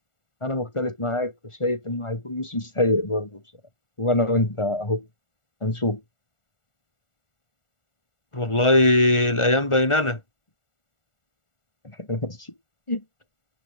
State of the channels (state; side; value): late; right; 1.4 ms